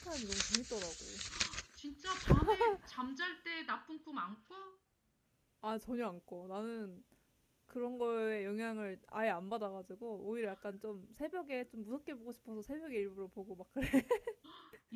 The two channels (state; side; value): identical; both; correlation 1.00